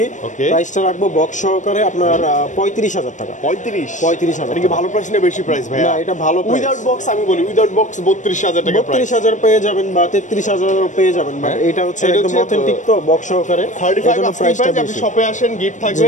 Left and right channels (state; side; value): late; right; 0.36 ms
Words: প্রাইসটা রাখবো বক্স সহকারে আপনার 35000 টাকা 35000 এটা কি ভালো প্রাইস না বেশি প্রাইস ভাই না এটা ভালো প্রাইস উইদাউট বক্স আমি বলি উইদাউট বক্স 32000 টাকা প্রাইস 32000 পেয়ে যাবেন বা 33000 পেয়ে যাবেন বাট এটা হচ্ছে একদম অথেন্টিক তো বক্স সহকারে 35 প্রাইসটা আপনি শপে আসেন গিফট